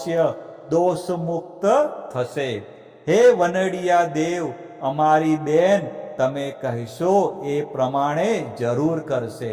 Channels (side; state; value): both; identical; correlation 1.00